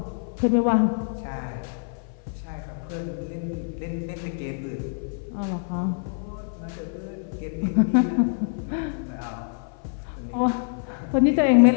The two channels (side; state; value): right; silent; 56 dB below the other